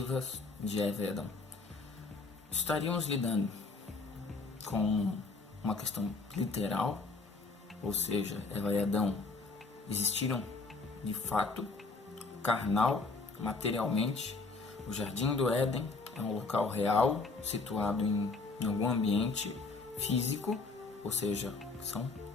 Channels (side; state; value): right; quieter; 3.9 dB